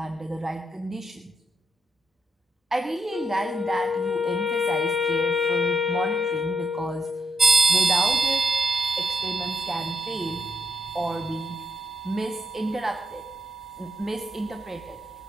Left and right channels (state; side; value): normal; both; correlation 0.80